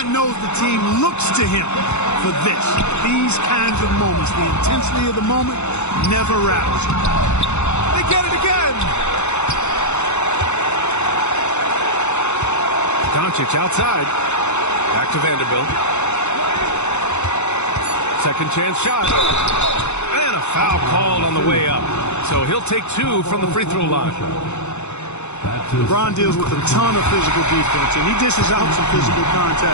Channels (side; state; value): right; late; 0.82 ms